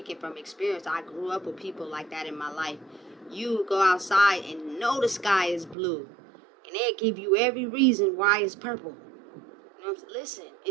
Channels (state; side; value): drops out; left; at 5.8 s